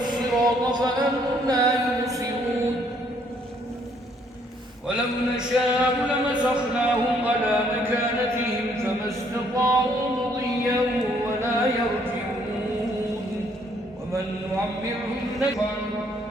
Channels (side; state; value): both; normal; correlation 0.66